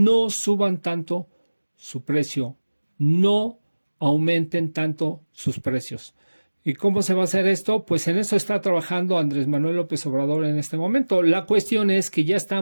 suban tanto su precio, no aumenten tanto sus precios. ¿Y cómo se va a hacer esto? Pues en eso está trabajando Andrés Manuel López Obrador en este momento. La cuestión es que ya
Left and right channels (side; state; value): both; inverted; correlation -1.00